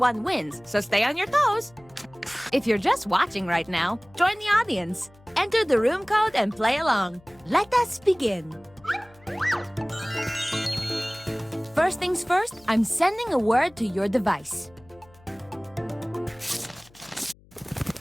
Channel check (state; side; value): noise; left; hum, 27 dB below the sound